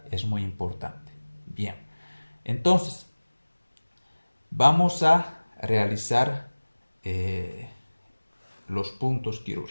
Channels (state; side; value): inverted; both; correlation -1.00